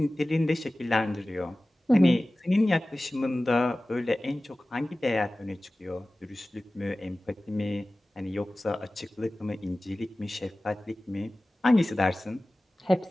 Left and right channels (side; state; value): both; normal; correlation 0.97